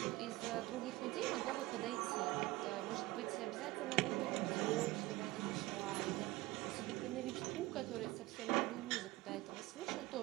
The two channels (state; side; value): quieter; left; 19.3 dB